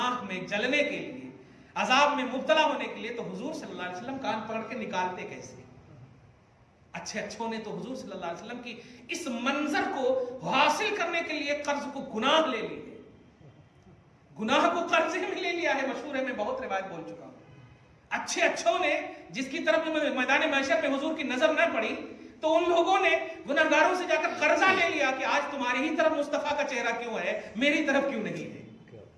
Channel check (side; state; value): both; identical; correlation 1.00